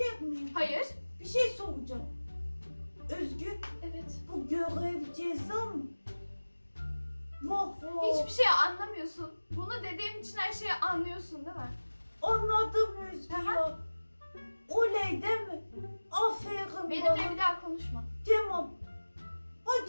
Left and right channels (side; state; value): both; inverted; correlation -1.00